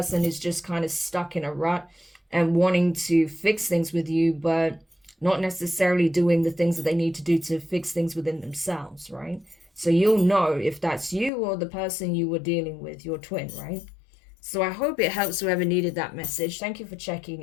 is just kind of stuck in a rut and wanting to fix things with you, but not necessarily doing the things that they need to do to fix things within themselves, right? So you'll know if that's you or the person you were dealing with, your twin, right? So I hope it helps whoever needed that message. Thank you for checking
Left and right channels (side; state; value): right; drops out; at 11.3 s